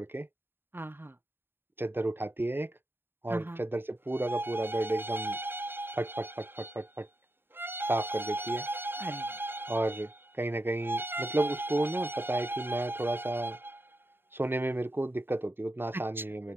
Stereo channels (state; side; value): late; left; 0.10 ms